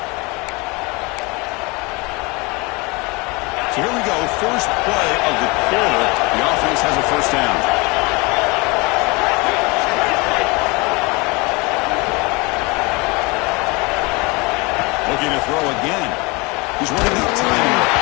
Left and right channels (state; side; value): quieter; right; 26.7 dB